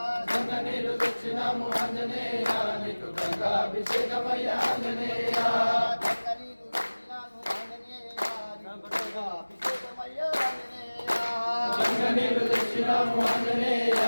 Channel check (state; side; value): inverted; both; correlation -1.00